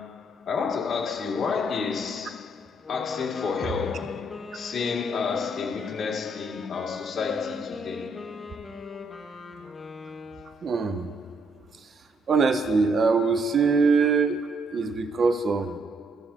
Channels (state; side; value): normal; both; correlation 0.71